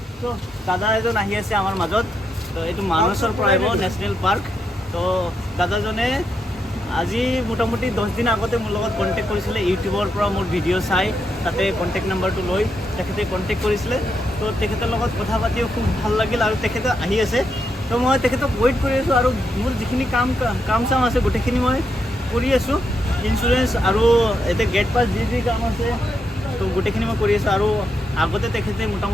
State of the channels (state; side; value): normal; both; correlation 0.81